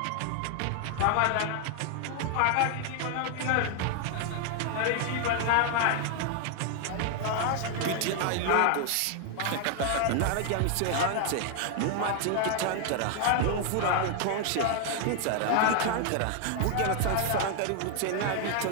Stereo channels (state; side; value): different; both; correlation 0.00